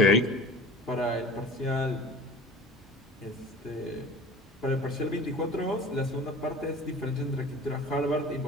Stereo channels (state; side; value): normal; both; correlation 0.40